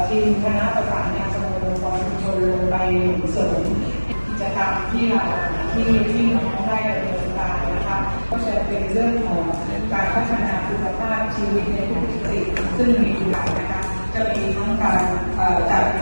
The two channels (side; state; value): both; inverted; correlation -1.00